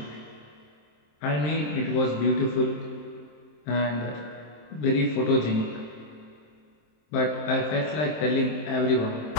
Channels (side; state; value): right; late; 27 ms